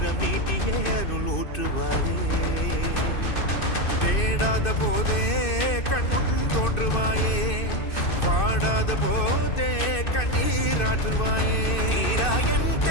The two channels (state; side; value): late; right; 2.6 ms